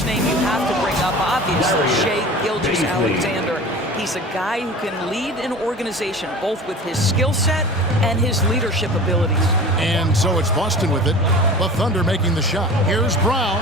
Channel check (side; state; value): both; normal; correlation 0.38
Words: name you have to bring up, obviously, Shai Gilgeous-Alexander. He's a guy who can lead an organization, both with his skill set and his leadership abilities. And so it's Boston with it. The Thunder making the shot. Here's